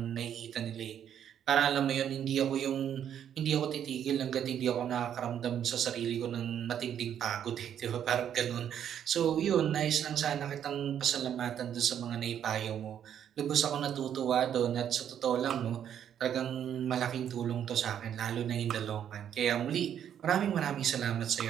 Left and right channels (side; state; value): left; quieter; 9.4 dB